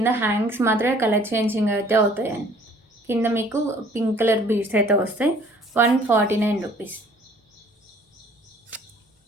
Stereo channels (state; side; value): normal; both; correlation 0.55